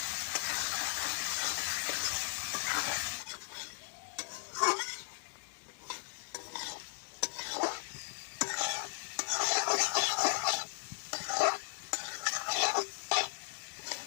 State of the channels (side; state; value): right; silent; 53 dB below the other